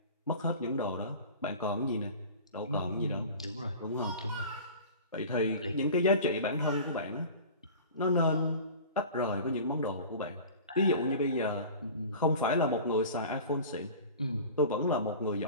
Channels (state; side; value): inverted; both; correlation -0.38